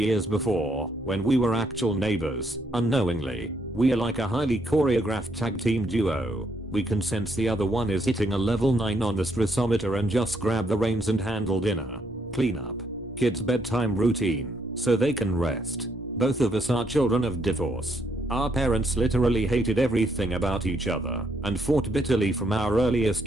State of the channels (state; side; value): normal; both; correlation 0.73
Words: before, when we were actual neighbors, unknowingly. We are like a highly choreographed tag team duo. We can sense the other one is hitting a level 9 on the stressometer and just grab the reins and handle dinner, cleanup, kids' bedtime routine, so they can rest. Both of us are children of divorce. Our parents literally hated everything about each other and fought bitterly from our